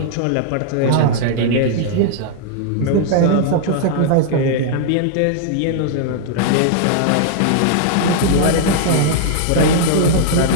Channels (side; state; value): both; different; correlation -0.01